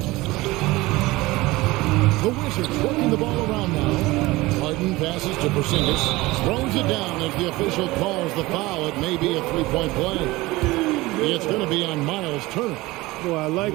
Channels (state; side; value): quieter; left; 20.3 dB